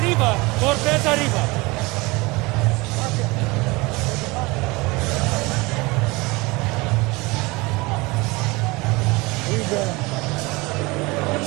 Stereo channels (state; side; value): quieter; left; 24.0 dB